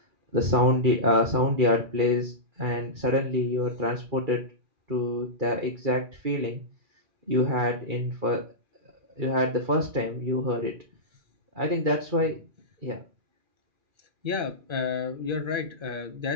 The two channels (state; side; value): late; left; 2.4 ms